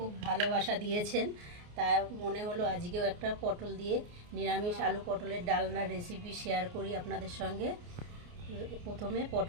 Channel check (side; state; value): left; late; 29 ms